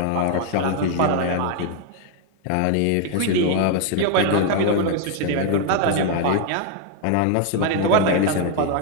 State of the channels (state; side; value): different; both; correlation 0.00